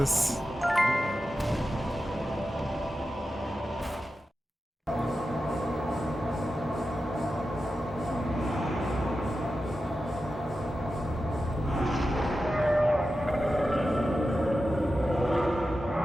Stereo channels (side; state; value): both; normal; correlation 0.92